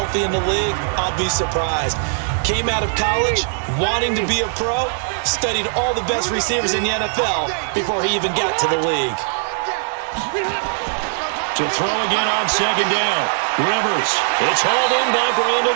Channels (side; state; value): left; silent; digital silence